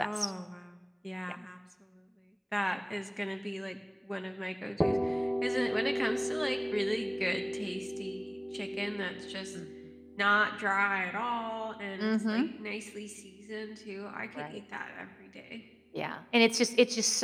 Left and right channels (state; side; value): identical; both; correlation 1.00